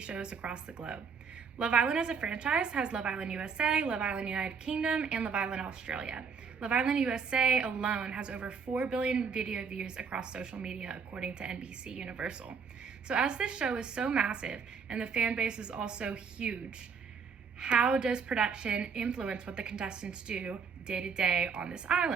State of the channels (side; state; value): left; quieter; 5.9 dB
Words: shows across the globe. Love Island as a franchise has Love Island USA, Love Island United Kingdom, and Love Island Australia. Love Island USA alone has over 4 billion video views across social media, according to NBC Universal. So as this show is so massive and the fan base is also huge, how does production influence what the contestants do day to day on this